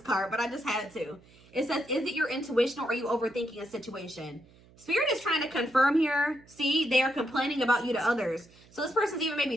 card, but I just had to. It says, is it your intuition, or are you overthinking a situation? Spirit is trying to confirm here. See, they are complaining about you to others. So this person's even maybe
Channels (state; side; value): noise; right; hum, 26 dB below the sound